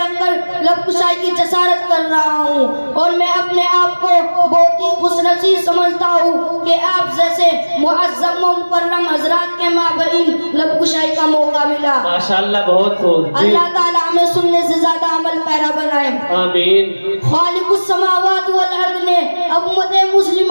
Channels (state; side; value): inverted; both; correlation -1.00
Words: کر لب کشائی کی جسارت کر رہا ہوں، اور میں اپنے آپ کو بہت ہی خوش نصیب سمجھتا ہوں کہ آپ جیسے معظم و مکرم حضرات کے مابین لب کشائی کا موقع ملا. ماشاءاللہ بہت خوب. اللہ تعالیٰ ہمیں سننے سے زیادہ عمل پیرا بنائے. آمین. خالق السماوات والارض نے امت